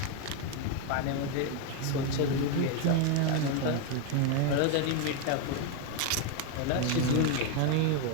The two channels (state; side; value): different; both; correlation 0.01